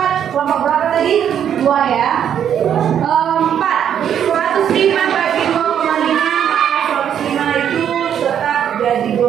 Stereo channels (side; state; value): left; quieter; 9.1 dB